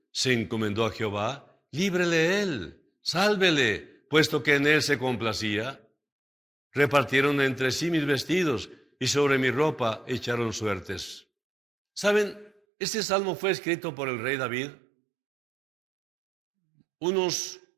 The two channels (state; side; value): drops out; left; at 12.5 s